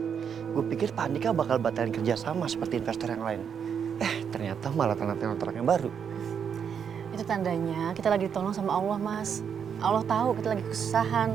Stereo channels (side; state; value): left; quieter; 7.5 dB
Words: Gue pikir Pak Andika bakal batalin kerjasama seperti investor yang lain. Ternyata malah tanda tangan kontrak yang baru. Itu tandanya kita lagi ditolong sama Allah, Mas. Allah tahu kita lagi